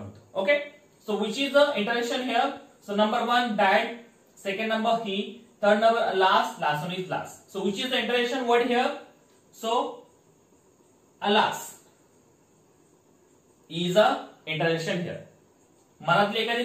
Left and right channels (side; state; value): both; identical; correlation 1.00